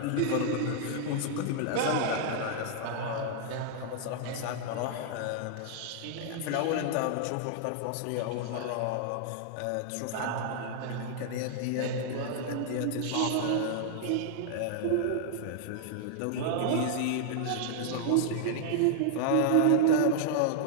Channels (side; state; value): both; different; correlation -0.01